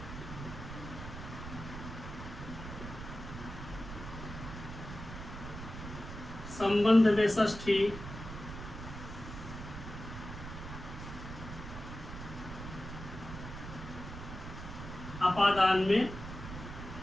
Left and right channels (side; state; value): right; noise; rumble, 9 dB below the sound